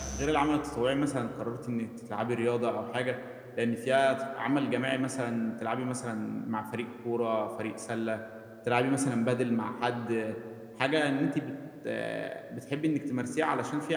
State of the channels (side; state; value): both; identical; correlation 1.00